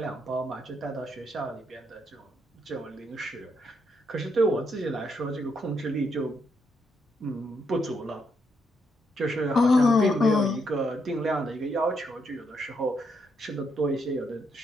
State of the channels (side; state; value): both; normal; correlation 0.77